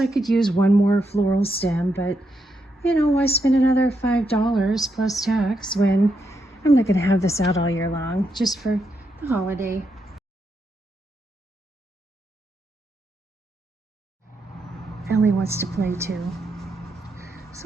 could use one more floral stem, but you know, why spend another $5 plus tax when I'm not gonna have this out all year long, just for the holiday. Ellie wants to play too.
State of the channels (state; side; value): normal; both; correlation 0.82